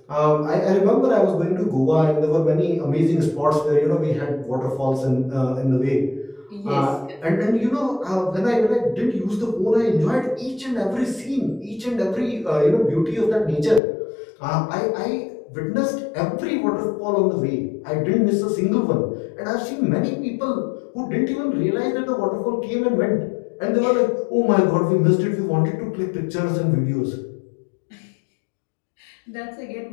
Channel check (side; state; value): right; drops out; at 13.8 s